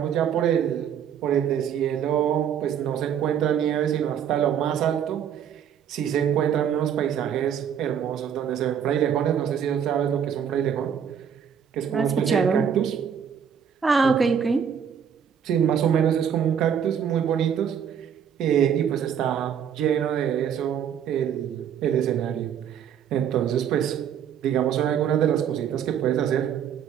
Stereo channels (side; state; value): left; quieter; 8.3 dB